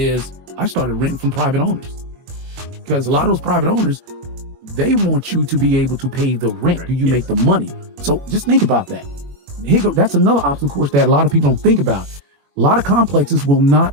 I started renting from private owners, because a lot of those private owners, they want you to be able to pay the rent. Do you make the money? So just think about that. That's another obstacle course that a lot of people don't think about. A lot of complexes will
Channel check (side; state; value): left; late; 21 ms